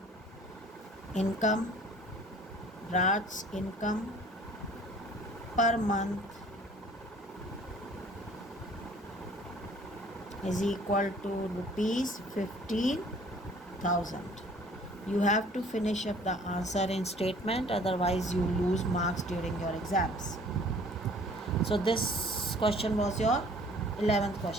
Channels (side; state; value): both; normal; correlation 0.52